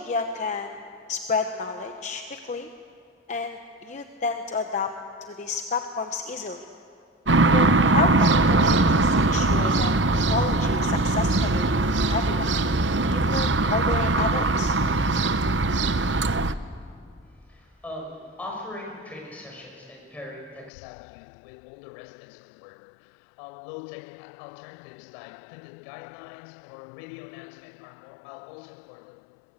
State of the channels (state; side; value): drops out; right; at 20.7 s